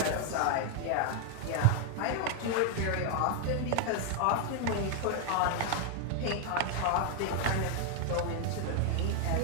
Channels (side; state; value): both; different; correlation 0.00